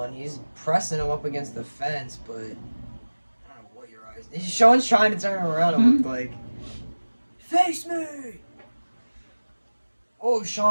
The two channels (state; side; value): inverted; both; correlation -1.00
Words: He's pressing him up against the fence, but I don't know what Uriah's... Sean's trying to turn him around, it looked like. Face me! Oh,